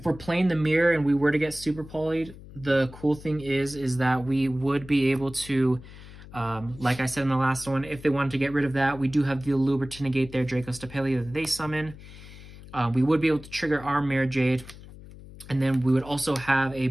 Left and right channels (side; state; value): left; noise; hum, 17 dB below the sound